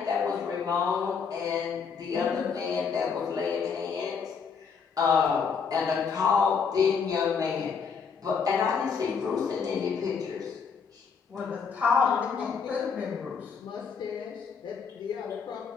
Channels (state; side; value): quieter; right; 6.0 dB